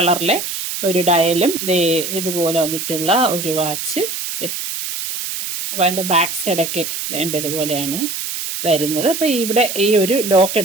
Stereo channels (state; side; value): noise; right; hiss, 5 dB below the sound